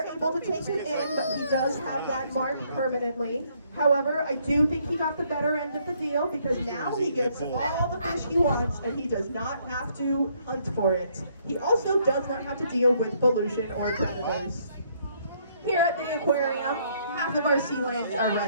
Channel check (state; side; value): inverted; both; correlation -0.68